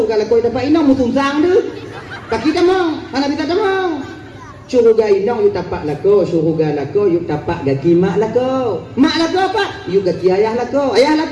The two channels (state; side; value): identical; both; correlation 1.00